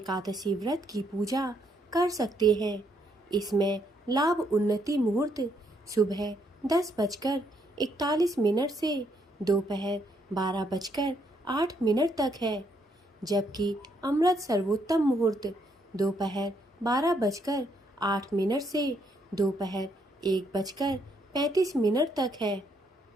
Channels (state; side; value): normal; both; correlation 0.73